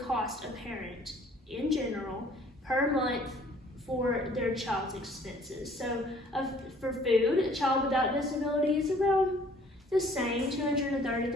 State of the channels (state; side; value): normal; both; correlation 0.56